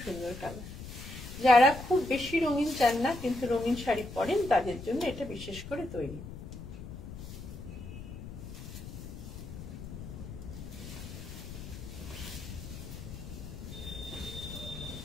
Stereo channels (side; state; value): left; noise; rumble, 10 dB below the sound